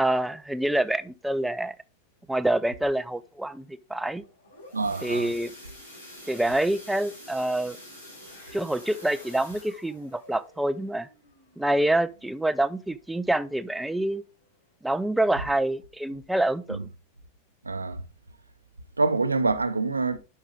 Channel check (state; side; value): normal; both; correlation 0.65